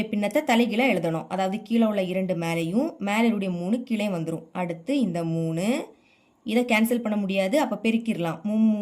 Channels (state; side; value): identical; both; correlation 1.00